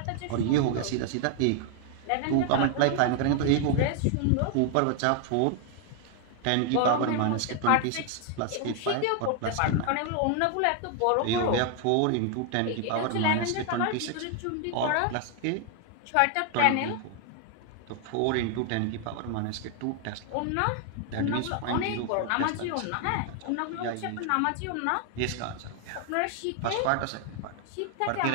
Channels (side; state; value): both; different; correlation 0.00